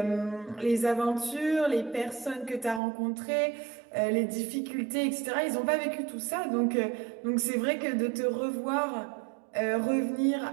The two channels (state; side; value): drops out; left; at 2.8 s